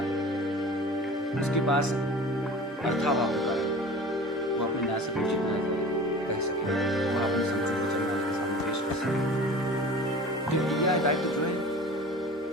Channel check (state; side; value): normal; both; correlation 0.40